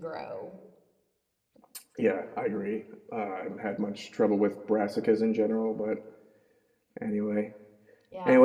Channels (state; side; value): identical; both; correlation 1.00